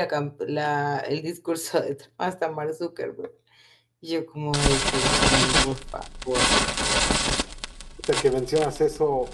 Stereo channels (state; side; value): identical; both; correlation 1.00